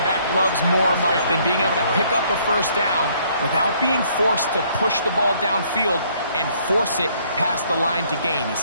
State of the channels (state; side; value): inverted; both; correlation -0.64